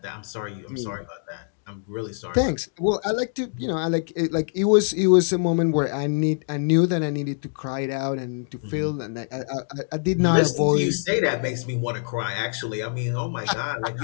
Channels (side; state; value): right; silent; digital silence